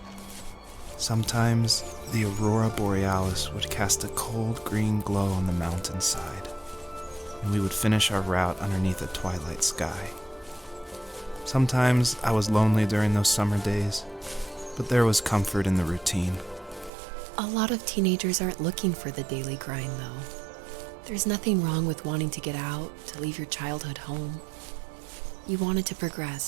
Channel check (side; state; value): left; drops out; at 16.9 s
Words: Sometimes, the aurora borealis would cast a cold green glow on the mountainside, and we would finish our route underneath a twilight sky. Sometimes I was lonely during those summer days, but there was comfort in the routine. A lot of teenagers aren't looking for the daily grind, though. There's nothing wrong with wanting to get out, to leave your childhood home. You wanted to